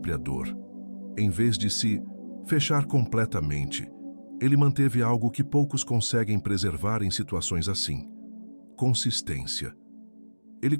dor. Em vez de se fechar completamente, ele manteve algo que poucos conseguem preservar em situações assim: consistência. Ele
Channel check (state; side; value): inverted; both; correlation -1.00